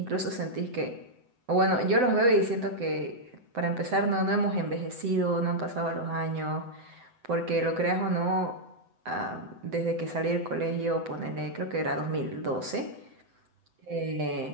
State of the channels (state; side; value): late; left; 7.9 ms